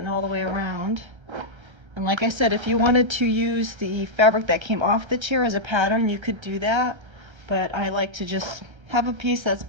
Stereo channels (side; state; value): left; late; 1.3 ms